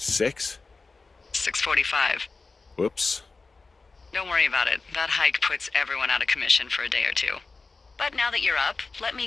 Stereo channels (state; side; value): quieter; right; 4.0 dB